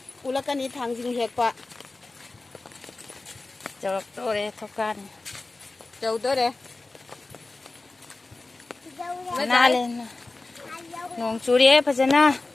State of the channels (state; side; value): quieter; right; 3.3 dB